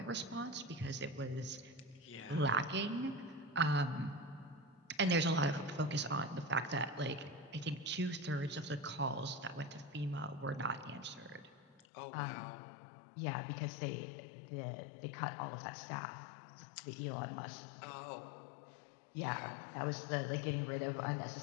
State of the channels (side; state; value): right; drops out; at 11.8 s